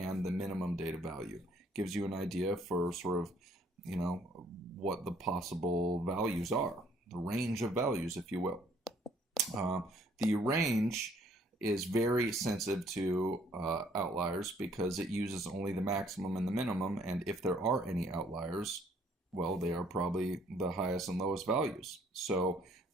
the minimum data value. Gives you an idea for sort of, what the possible values are. The range of values, if you will. The range is very sensitive to outliers because it uses only the maximum and the minimum, and if there are any outliers, well, they are probably the highest and lowest values. So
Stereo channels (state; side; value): normal; both; correlation 0.63